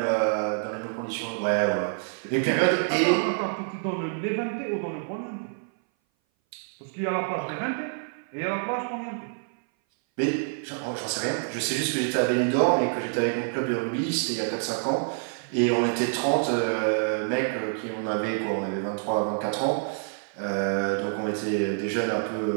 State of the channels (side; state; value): left; silent; 58 dB below the other